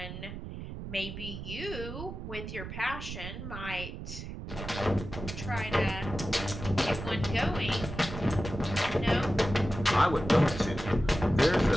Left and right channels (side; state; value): right; noise; rumble, 9 dB below the sound